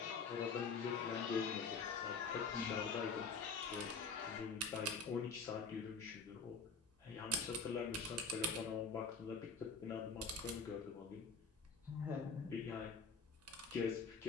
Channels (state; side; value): quieter; right; 4.4 dB